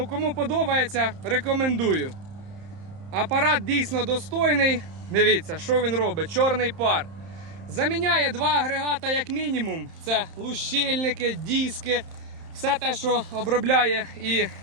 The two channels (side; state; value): left; late; 30 ms